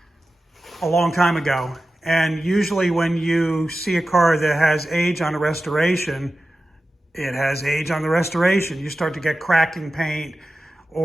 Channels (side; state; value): both; normal; correlation 0.94